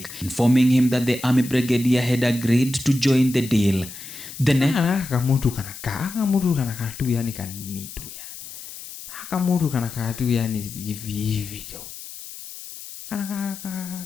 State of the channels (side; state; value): left; noise; hiss, 13 dB below the sound